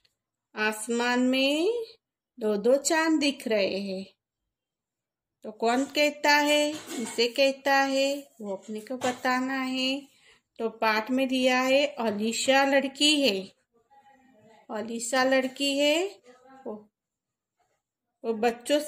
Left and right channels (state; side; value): identical; both; correlation 1.00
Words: आसमान में 2-2 चांद दिख रहे हैं। तो कौन कहता है, किसे कहता है, वो अपने को बताना है। तो पाठ में दिया है, अलीशा लड़की है। अलीशा लड़की है, वो बच्चों